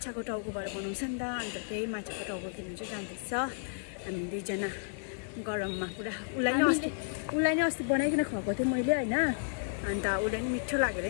टाउकोबाट बनाउँछ नि त अन्त त्यही माछाको टाउको किन्नु चाहिँ जाँदैछ हामी दुईजना गरममा पुरा उलाई नै अस्ति बनाइकन खुवाएको थिएँ मैले हैन अन्त उसलाई नि मिठो लागेर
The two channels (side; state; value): right; silent; 56 dB below the other